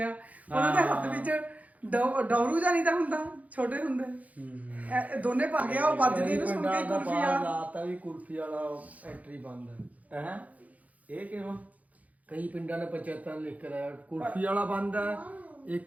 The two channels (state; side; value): late; left; 0.073 ms